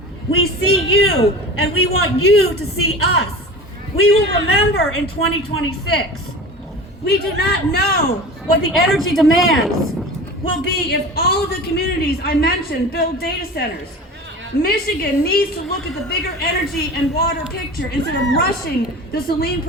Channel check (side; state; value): both; normal; correlation 0.34